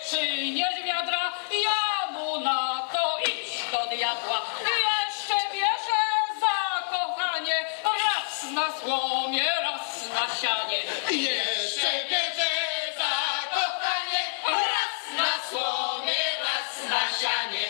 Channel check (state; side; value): silent; right; digital silence